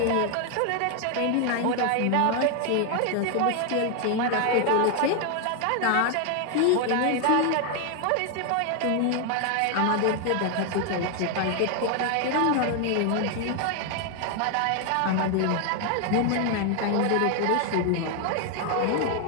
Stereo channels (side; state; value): both; different; correlation 0.01